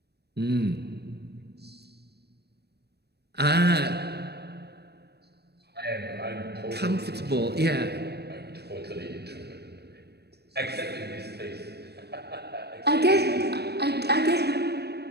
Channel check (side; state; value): left; late; 0.47 ms